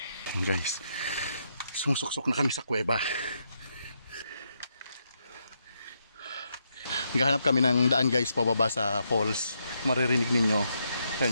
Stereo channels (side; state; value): both; inverted; correlation -0.80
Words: Guys, sumusuksok na kami sa kuweba. Naghahanap kami ng daan guys, pababa sa falls. Maririnig ninyo,